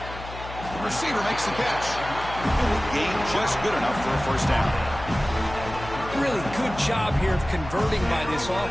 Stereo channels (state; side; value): noise; left; hum, 12 dB below the sound